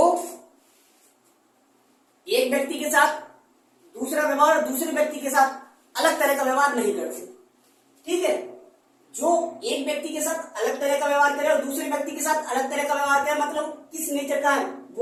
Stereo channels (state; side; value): identical; both; correlation 1.00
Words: एक व्यक्ति के साथ दूसरा व्यवहार और दूसरे व्यक्ति के साथ अलग तरह का व्यवहार नहीं करते, ठीक है। जो एक व्यक्ति के साथ अलग तरह का व्यवहार करे और दूसरे व्यक्ति के साथ अलग तरह का व्यवहार करे, मतलब किस नेचर का है?